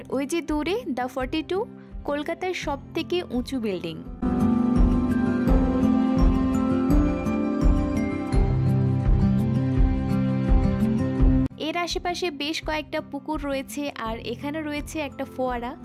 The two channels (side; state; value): both; identical; correlation 1.00